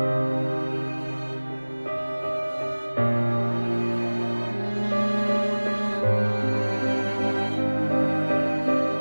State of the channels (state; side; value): inverted; both; correlation -1.00